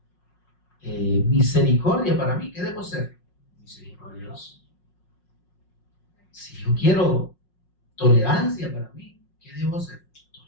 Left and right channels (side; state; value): right; late; 5.5 ms